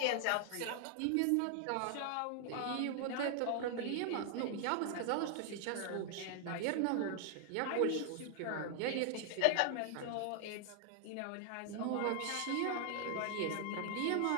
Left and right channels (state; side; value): different; both; correlation 0.00